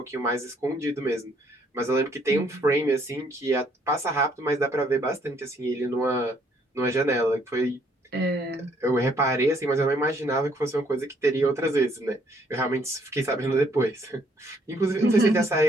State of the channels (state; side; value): normal; both; correlation 0.67